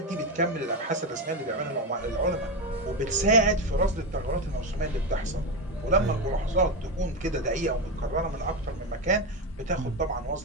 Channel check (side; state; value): both; normal; correlation 0.13